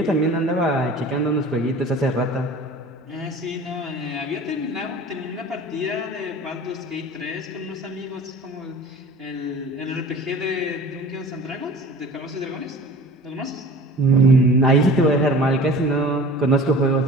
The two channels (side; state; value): both; normal; correlation 0.42